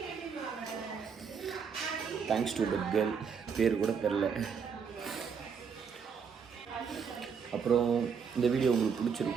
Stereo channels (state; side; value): quieter; left; 6.4 dB